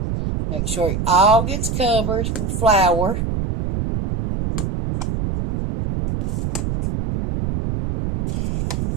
Make sure it all gets covered with flour.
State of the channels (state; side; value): noise; right; rumble, 2 dB below the sound